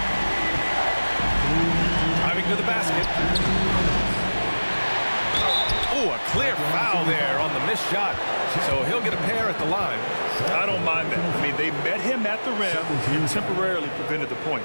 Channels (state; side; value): inverted; both; correlation -1.00